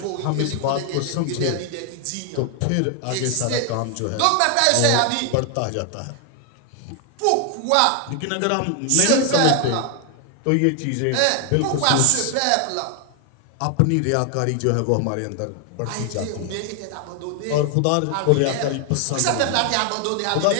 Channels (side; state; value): both; different; correlation 0.00